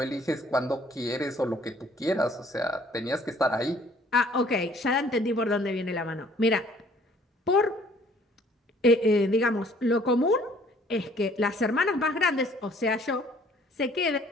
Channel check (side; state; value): both; normal; correlation 0.58